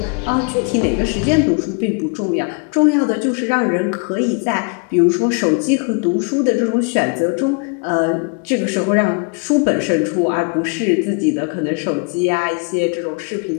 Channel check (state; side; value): quieter; right; 35.3 dB